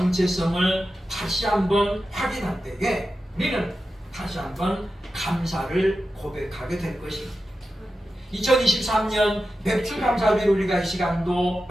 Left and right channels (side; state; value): both; normal; correlation 0.91